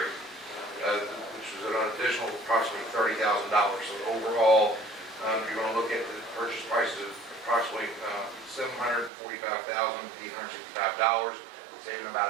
which was an additional approximately $30,000. So overall, you're going to look at the purchase price of approximately $745,865. Saving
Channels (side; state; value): left; drops out; at 9.1 s